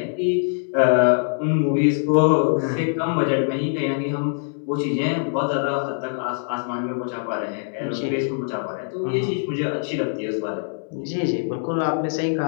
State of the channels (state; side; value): silent; right; digital silence